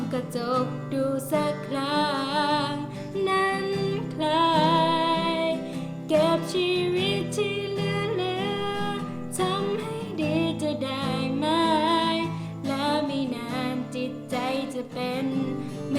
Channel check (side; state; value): both; identical; correlation 1.00